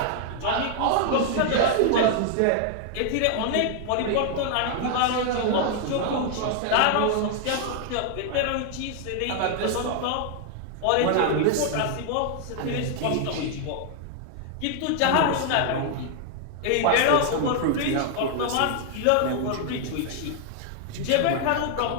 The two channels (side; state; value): both; different; correlation 0.00